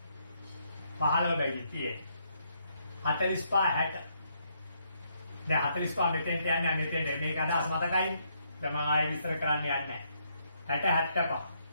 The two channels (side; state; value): both; inverted; correlation -0.74